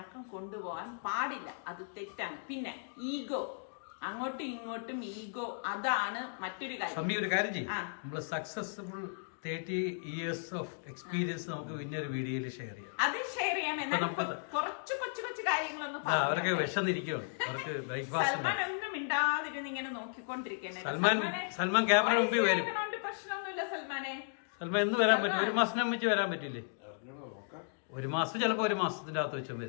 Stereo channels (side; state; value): right; silent; digital silence